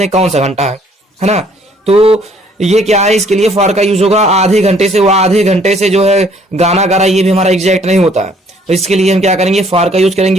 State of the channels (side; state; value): both; normal; correlation 0.61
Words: कौन सा घंटा है ना। तो ये क्या है, इसके लिए फार का यूज होगा। आधे घंटे से, वो आधे घंटे से जो है गाना गा रहा है, ये भी हमारा एग्जैक्ट नहीं होता है, तो इसके लिए हम क्या करेंगे, फार का यूज